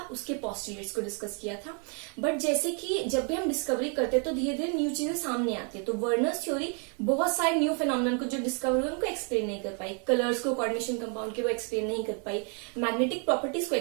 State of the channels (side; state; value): left; quieter; 39.6 dB